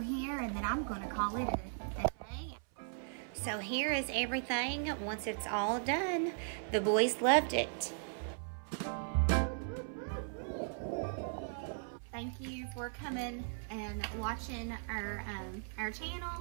here, and then I'm gonna call it a day. So here is everything once it's all done. The boys loved it. Thank you for coming and watching our channel.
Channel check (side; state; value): left; silent; 53 dB below the other